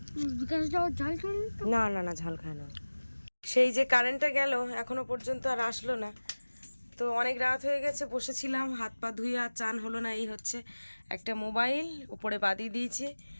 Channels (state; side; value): inverted; both; correlation -1.00